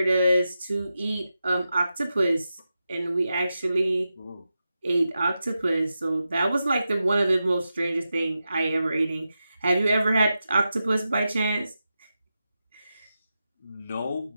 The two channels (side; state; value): both; inverted; correlation -0.90